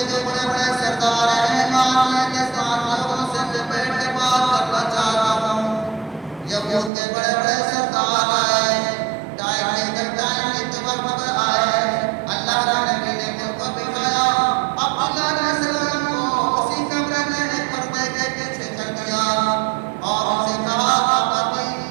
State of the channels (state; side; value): drops out; left; at 6.9 s